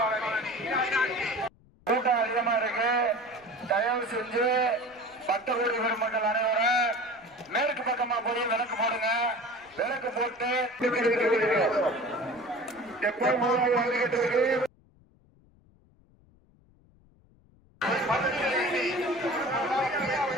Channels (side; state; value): left; noise; rumble, 30 dB below the sound